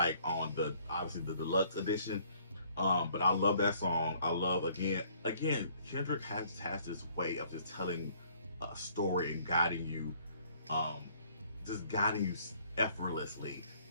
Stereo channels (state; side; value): inverted; both; correlation -0.61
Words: on obviously the deluxe edition. But I love that song. I love again Kendrick has this way of just telling a story and guiding you effortlessly